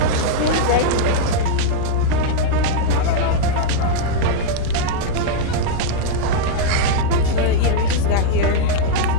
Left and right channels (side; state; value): both; different; correlation -0.01